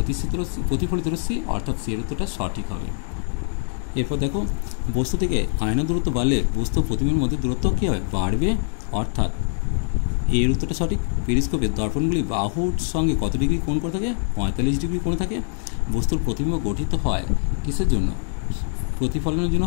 প্রতিফলিত রশ্মি, অর্থাৎ এর উত্তরটা সঠিক হবে। এরপর দেখো বস্তু থেকে আয়না দূরত্ব বাড়লে বস্তু প্রতিবিম্বের মধ্যে দূরত্ব কী হবে? বাড়বে, অর্থাৎ এর উত্তরটা সঠিক। পেরিস্কোপের দর্পণগুলি বাহুর সঙ্গে কত ডিগ্রি কোণ করে থাকে? 45 ডিগ্রি কোণে থাকে। বস্তুর প্রতিবিম্ব গঠিত হয় কিসের জন্য? প্রতিফলনের জন্য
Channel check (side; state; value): right; silent; 63 dB below the other